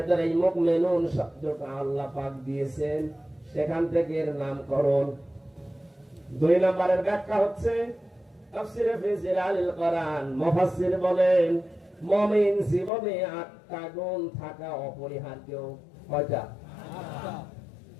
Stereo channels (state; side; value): drops out; right; at 12.9 s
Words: এই মুমিনুন শব্দটা আল্লাহ পাক দিয়েছেন, সেখান থেকে এর নামকরণ। 2 নম্বরের ব্যাখ্যা হচ্ছে তাফসীরে ফি জিলালিল কোরআন। মুফাসসির বলেন মুমিন জীবনে 8টা গুণ থাকা অপরিহার্য। কয়টা?